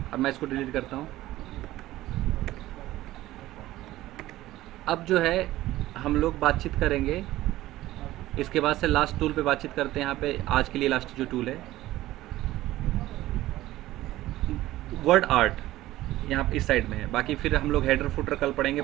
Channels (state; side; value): quieter; left; 15.9 dB